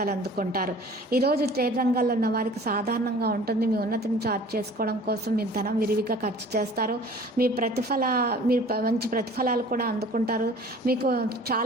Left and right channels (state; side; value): normal; both; correlation 0.47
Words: అందుకుంటారు. ఈరోజు ట్రేడ్ రంగాల్లో ఉన్న వారికి సాధారణంగా ఉంటుంది. మీ ఉన్నతిని చార్ట్ చేసుకోవడం కోసం మీరు ధనం విరివిగా ఖర్చు చేస్తారు. మీరు మంచి ప్రతిఫలాలు కూడా అందుకుంటారు. మీకు